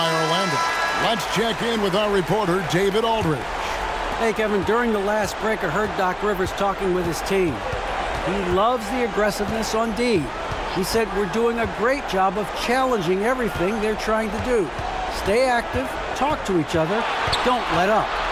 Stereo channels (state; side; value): identical; both; correlation 1.00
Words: Orlando. Let's check in with our reporter, David Aldridge. Hey, Kevin, during the last break, I heard Doc Rivers talking with his team. He loves the aggressiveness on D. He said we're doing a great job of challenging everything they're trying to do. Stay active, talk to each other, don't let up.